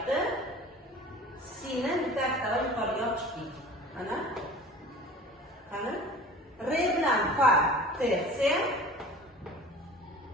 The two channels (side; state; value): both; normal; correlation 0.41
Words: Si'ni bitta oktava yuqoriga olib chiqdik. Mana. Qani? Re bilan fa tersiya,